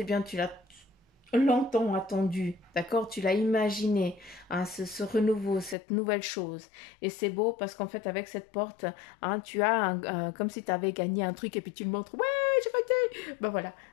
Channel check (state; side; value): drops out; right; at 5.8 s